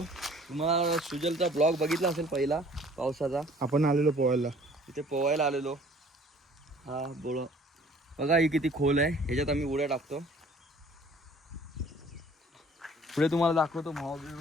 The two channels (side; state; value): both; normal; correlation 0.54